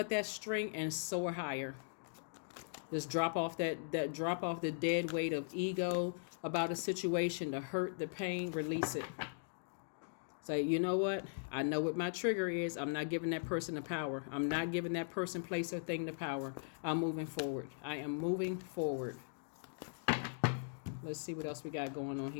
that string and soar higher. Just drop off the dead weight of ego about a situation, the hurt, the pain, release it. Say, you know what? I know what my trigger is. I'm not giving that person the power. I'm not giving that person, place, or thing the power. I'm moving forward. I am moving forward. Let's see what else we got going on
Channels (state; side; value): silent; right; digital silence